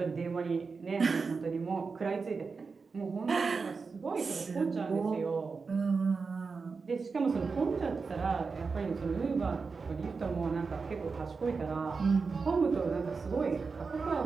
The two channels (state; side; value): quieter; left; 4.7 dB